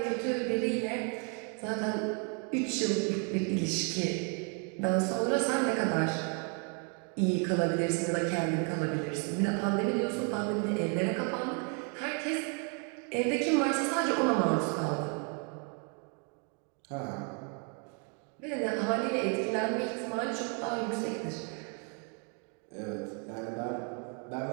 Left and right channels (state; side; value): quieter; left; 38.7 dB